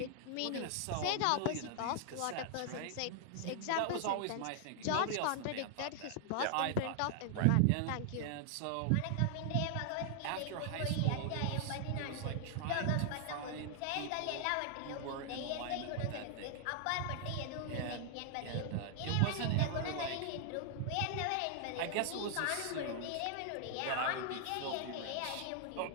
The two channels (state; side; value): different; both; correlation 0.00